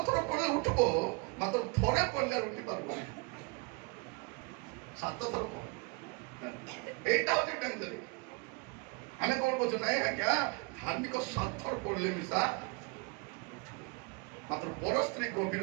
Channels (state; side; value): quieter; left; 28.0 dB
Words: ଥର ପଢିଲେ ଉଠିବ ମାତ୍ର ଥରେ ପଢିଲେ ଉଠି ପାରିବନି 7 ଥର ପଢ এইটা হচ্ছে ডেঞ্জার আমি কোন বলছি নাই আজ্ঞা ধার্মিক 7 ଥର পড়লে মিশা মাত্র বড় স্ত্রী গভীর